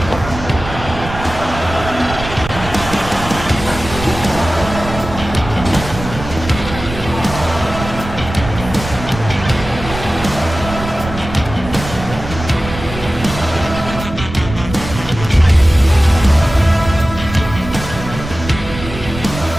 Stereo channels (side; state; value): right; noise; rumble, 10 dB below the sound